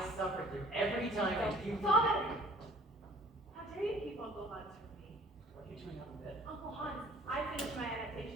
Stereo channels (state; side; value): normal; both; correlation 0.52